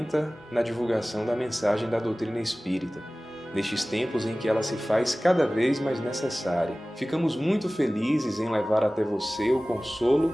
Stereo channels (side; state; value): both; normal; correlation 0.98